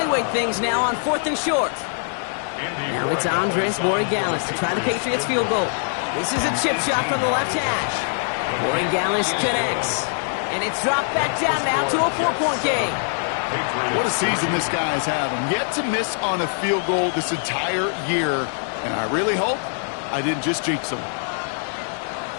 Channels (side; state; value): right; silent; digital silence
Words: things now on 4th and short. Now it's Andres Borregales to try the Patriots field goal. This is a chip shot from the left hash. Borregales connects. And it's dropped back down now to a 4-point game. What a season this guy is having. Yet to miss on a field goal this entire year. And I really hope I didn't just jinx him.